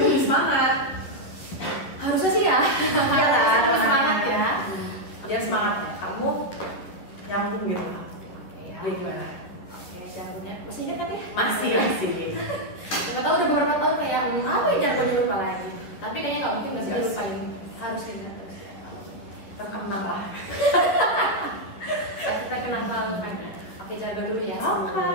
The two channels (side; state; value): right; late; 11 ms